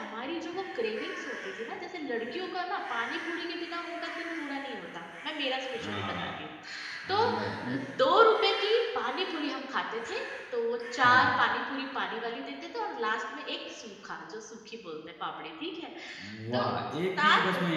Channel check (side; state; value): both; identical; correlation 1.00